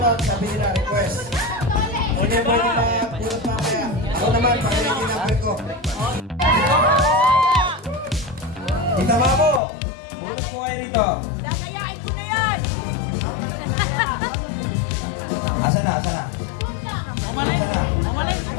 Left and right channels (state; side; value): drops out; right; at 9.6 s